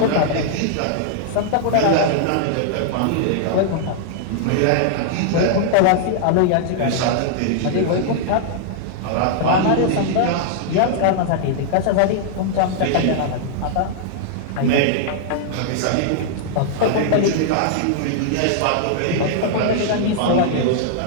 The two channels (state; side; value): different; both; correlation -0.01